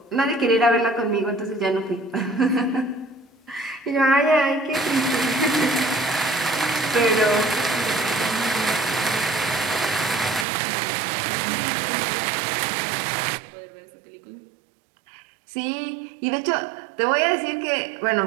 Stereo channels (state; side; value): drops out; left; at 10.5 s